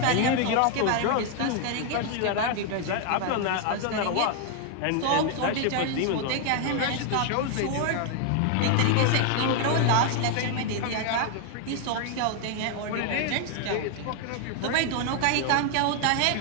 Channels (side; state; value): both; different; correlation 0.00